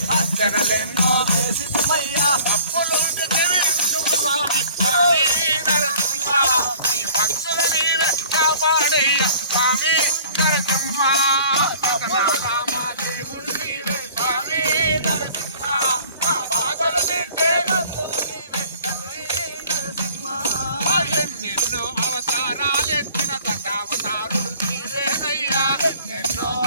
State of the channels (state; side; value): inverted; both; correlation -0.50